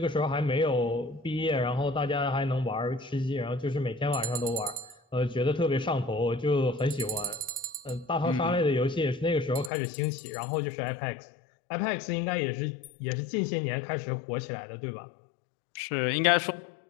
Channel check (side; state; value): right; drops out; at 9.7 s